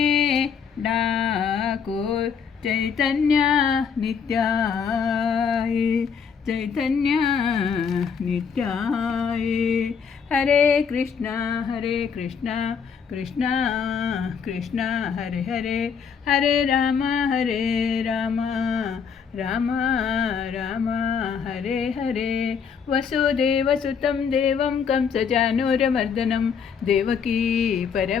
डाको चैतन्य नित्याय हरे कृष्णा कृष्णा कृष्णा हरे हरे हरे राम राम राम हरे हरे वसुदेवसुतं देवं कंसचानूरमर्दनं देवकी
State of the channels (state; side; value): quieter; right; 6.6 dB